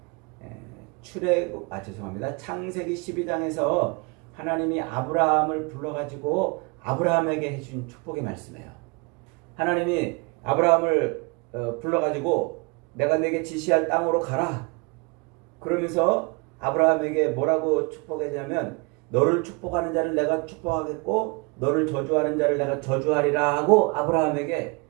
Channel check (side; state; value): left; quieter; 29.9 dB